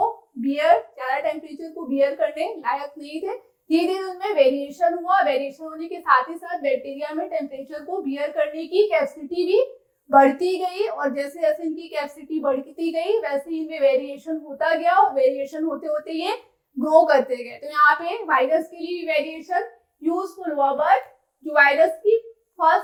ज्यादा टेम्परेचर को बियर करने लायक नहीं थे। धीरे धीरे उनमें वेरिएशन हुआ, वेरिएशन होने के साथ ही साथ बैक्टीरिया में टेम्परेचर को बियर करने की कैपेसिटी भी बढ़ती गई, और जैसे जैसे इनकी कैपेसिटी बढ़ती गई वैसे ही इनमें वेरिएशन होता गया, और वेरिएशन होते होते ये ग्रो करते गए। तो यहाँ पे वायरस के लिए वेरिएशन यूजफुल हुआ, बट जो वायरस की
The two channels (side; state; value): both; identical; correlation 1.00